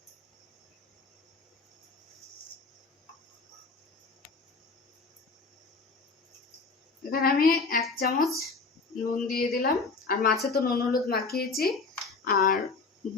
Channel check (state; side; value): quieter; right; 4.2 dB